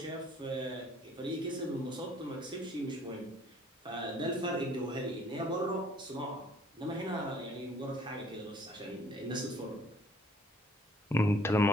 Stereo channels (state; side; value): normal; both; correlation 0.59